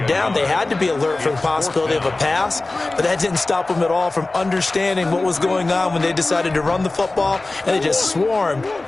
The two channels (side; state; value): right; quieter; 3.1 dB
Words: down, they had to be alert for the possibility of a pass, but that didn't stop them at all from understanding what was going on when they decided to run the football, and they just swarmed